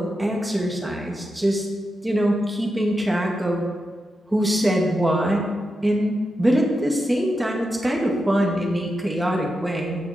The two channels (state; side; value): normal; both; correlation 0.88